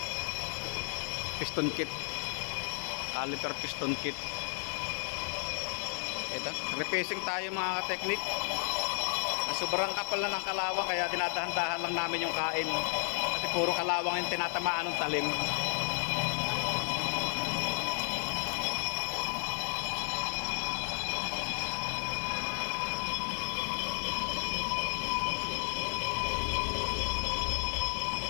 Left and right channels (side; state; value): right; silent; 56 dB below the other